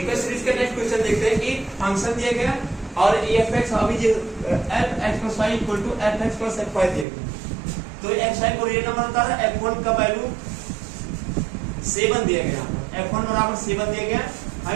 series का next question देखते हैं कि फंक्शन दिया गया और f(x) अभी जो f(x + y = f(x + f(y) दिया गया, तो x(y) को रियल नंबर होता है, f1 का वैल्यू 7 दिया गया, f1 बराबर 7 दिया गया,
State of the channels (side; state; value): left; drops out; at 7.1 s